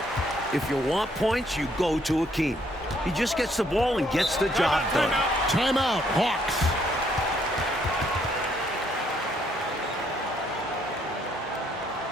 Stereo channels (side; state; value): both; normal; correlation 0.69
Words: If you want points, you go to Akeem. He just gets the ball and gets the job done. Timeout, Hawks.